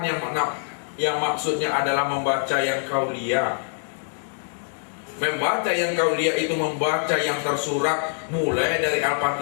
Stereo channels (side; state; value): right; silent; digital silence